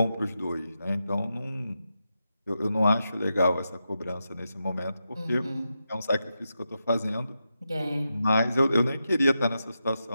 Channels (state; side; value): inverted; both; correlation -0.88